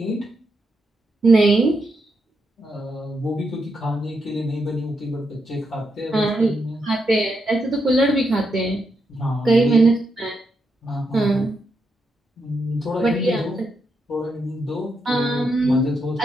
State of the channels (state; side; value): normal; both; correlation 0.82